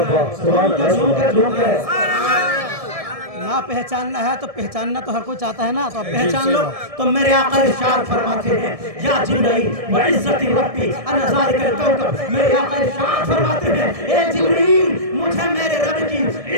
نہ پہچاننا ہے تو پہچاننا تو ہر کوئی چاہتا ہے نا, تو آپ پہچان لو. تو میرے آقا ارشاد فرماتے ہیں یا جبرائیل وعزت ربی انا ذالک الکوکب, میرے آقا ارشاد فرماتے ہیں اے جبرائیل مجھے میرے رب کی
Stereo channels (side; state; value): left; late; 1.7 ms